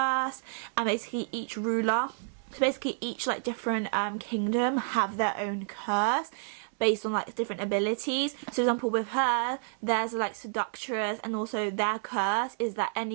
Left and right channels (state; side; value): silent; left; 58 dB below the other